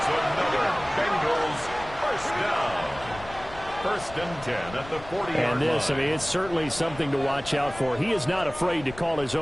another Bengals first down. 1st and 10 at the 40-yard line. And this, I mean, it's certainly something to watch out for. He is not afraid to call his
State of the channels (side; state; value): left; noise; rumble, 16 dB below the sound